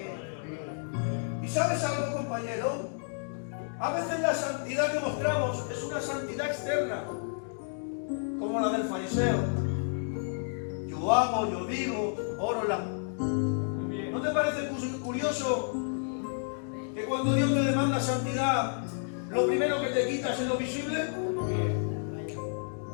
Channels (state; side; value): silent; right; digital silence